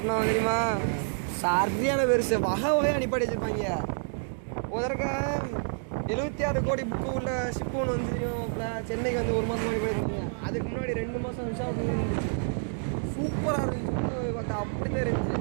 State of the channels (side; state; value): left; silent; digital silence